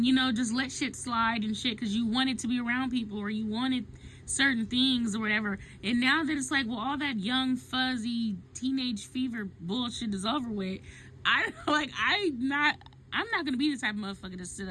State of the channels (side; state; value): both; identical; correlation 1.00